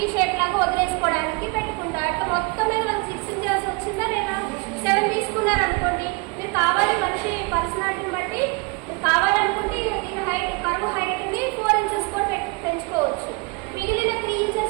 షేప్ లాగా వదిలేసుకోవడానికి పెట్టుకుంటారు. అట్లా మొత్తం మీద మనకు 6 ఇంచెస్ వచ్చిందా లేదా. 7 తీసుకున్నారు అనుకోండి, మీరు కావాలి మనిషి పర్సనాలిటీని బట్టి మీరు కావాలనుకుంటే దీని హైట్ కర్వ్ హైట్ ని 4 ఇంచెస్ కూడా పెంచుకోవచ్చు. మిగిలిన 3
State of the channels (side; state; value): left; quieter; 28.1 dB